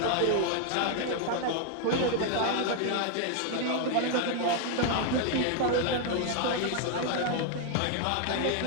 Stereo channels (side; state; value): both; different; correlation 0.00